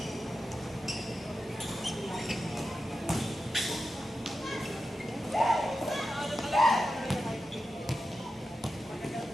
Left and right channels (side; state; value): both; normal; correlation 0.91